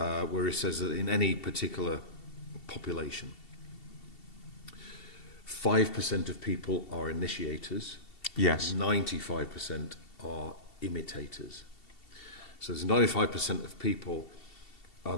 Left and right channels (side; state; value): right; late; 2.7 ms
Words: he says that in any particular population, 5% of people are initiators. Yes. 95% are imitators. So there's 95% of people are